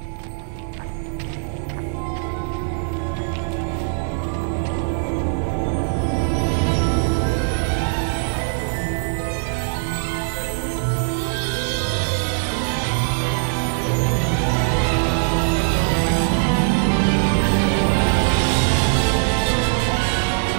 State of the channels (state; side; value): silent; left; digital silence